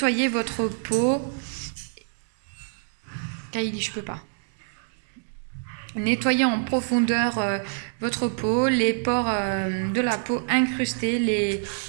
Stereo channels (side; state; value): left; silent; 61 dB below the other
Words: votre peau. Kylie, je peux pas. Nettoyer en profondeur votre peau, les pores de la peau incrustés,